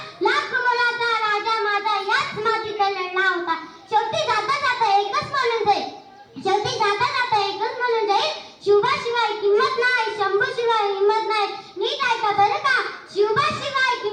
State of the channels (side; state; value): both; identical; correlation 1.00